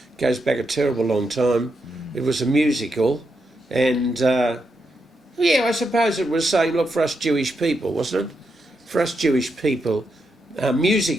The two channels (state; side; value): normal; both; correlation 0.83